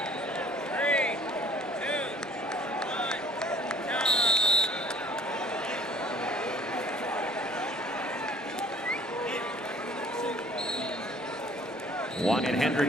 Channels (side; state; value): both; normal; correlation 0.54